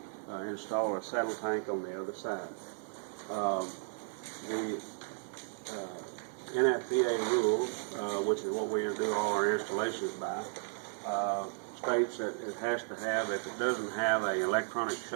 install a saddle tank on the other side. The NFPA rules, which is what we do all our installations by, states that it has to have, if it doesn't have an electronic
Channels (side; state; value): left; silent; 55 dB below the other